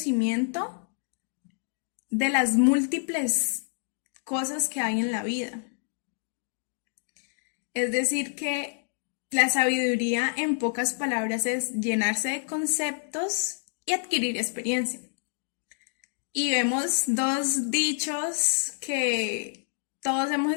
de las múltiples cosas que hay en la vida. Es decir, que la sabiduría, en pocas palabras, es llenarse de conceptos y adquirir experiencia. Y vemos dos dichos que todos hemos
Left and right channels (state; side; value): silent; right; 59 dB below the other